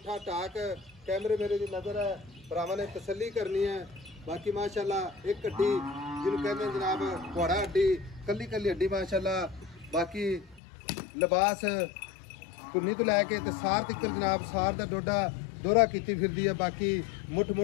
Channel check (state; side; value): drops out; right; at 10.6 s